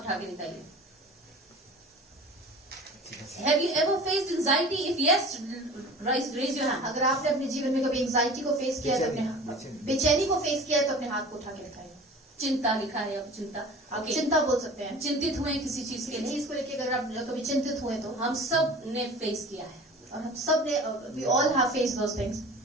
उठा के दिखाइए. Have you ever faced anxiety? If yes, raise your hand. अगर आपने अपने जीवन में कभी एंजाइटी को फेस किया है तो अपने बेचैनी को फेस किया है तो अपने हाथ को उठा के दिखाइए। चिंता लिखा है, अब चिंता. आप Okay. चिंता बोल सकते हैं। चिंतित हुए किसी चीज के किसी लिए, चीज को लेकर अगर आप कभी चिंतित हुए तो हम सब ने फेस किया है. और हम सब ने we all have faced those things.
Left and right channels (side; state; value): both; normal; correlation 0.40